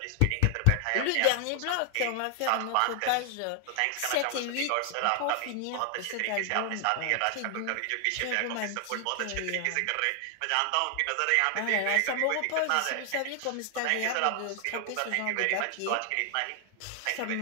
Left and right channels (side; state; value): both; different; correlation 0.00